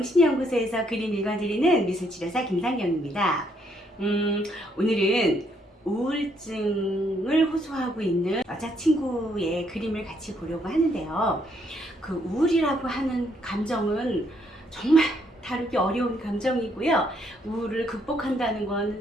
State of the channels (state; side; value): normal; both; correlation 0.71